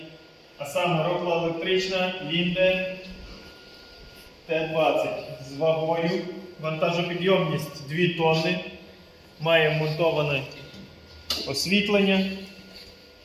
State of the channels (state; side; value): identical; both; correlation 1.00